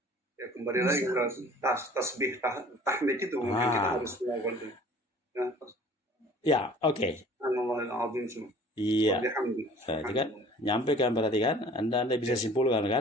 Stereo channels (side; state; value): both; normal; correlation 0.49